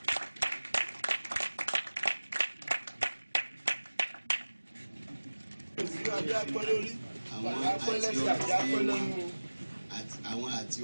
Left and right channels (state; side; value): inverted; both; correlation -1.00